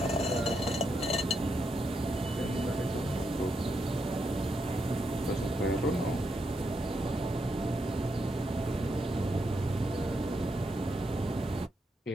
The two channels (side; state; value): both; normal; correlation 0.82